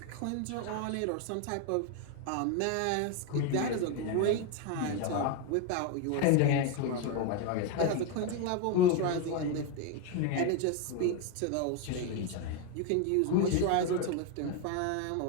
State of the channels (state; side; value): different; both; correlation 0.02